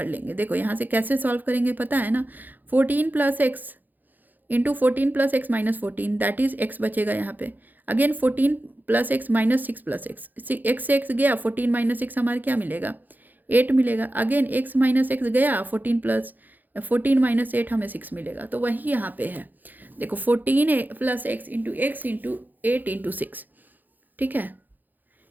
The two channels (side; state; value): left; late; 0.085 ms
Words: लेंगे। देखो यहाँ से कैसे सॉल्व करेंगे पता है ना, 14 plus x into 14 plus x minus 14 that is x बचेगा यहाँ पे, again 14 plus x minus 6 plus x, x से एक्स गया 14 माइनस 6 हमारे क्या मिलेगा 8 मिलेगा, अगेन एक्स माइनस एक्स गया 14 माइनस 8 हमें 6 मिलेगा। तो वही यहाँ पे है, देखो 14 प्लस एक्स इंटू 8 इंटू 6, ठीक है